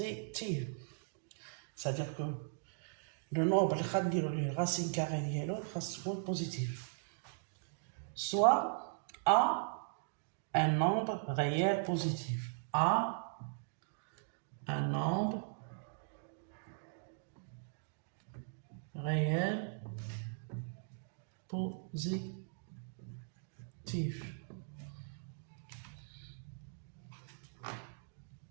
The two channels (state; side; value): silent; left; digital silence